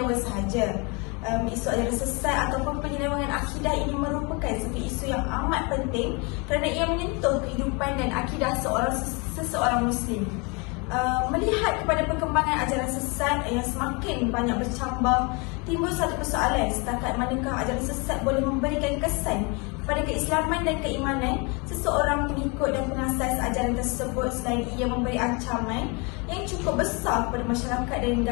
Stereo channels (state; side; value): quieter; right; 30.4 dB